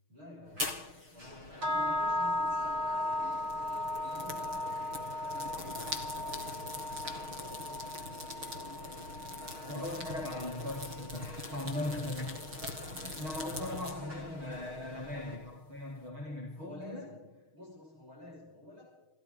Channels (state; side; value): late; left; 6.4 ms